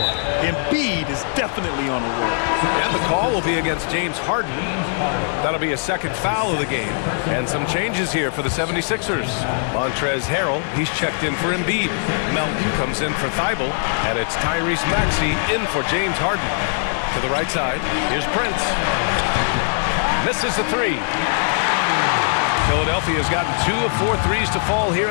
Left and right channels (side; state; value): right; silent; 65 dB below the other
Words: Embiid is definitely on a roll. And the call will be against James Harden. That'll be a second foul of the game. And some changes here for the 76ers. Montrezl Harrell, he's checked in for Embiid. Melton comes in for Thibault. And it's Tyrese Maxey in for James Harden. To the right side, here's Prince. Misses the three. Philadelphia's gotten 2 of 4 threes to fall here